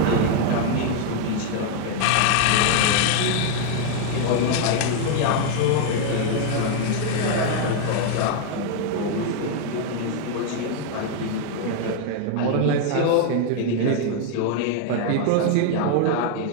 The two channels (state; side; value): different; both; correlation 0.00